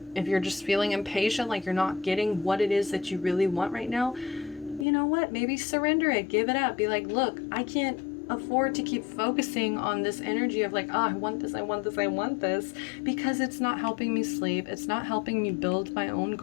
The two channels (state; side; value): drops out; right; at 4.9 s